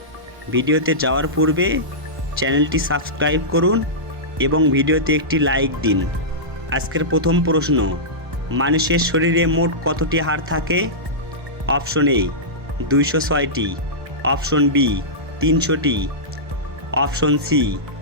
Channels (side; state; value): left; late; 1.1 ms